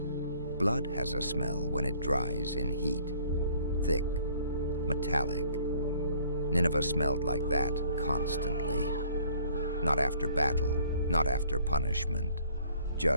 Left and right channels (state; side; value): inverted; both; correlation -0.58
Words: Blood has a smell when it dries in heat. Thick, metallic. Nineveh smelled like that constantly. Not after battle, not after punishment.